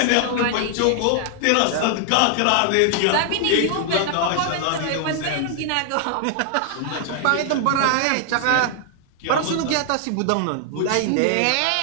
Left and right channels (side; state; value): both; different; correlation 0.00